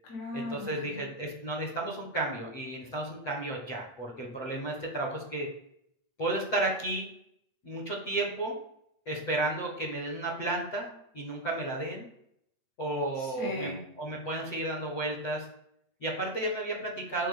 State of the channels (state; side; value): late; right; 8.4 ms